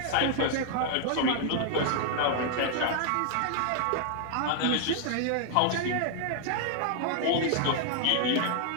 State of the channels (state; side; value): different; both; correlation 0.00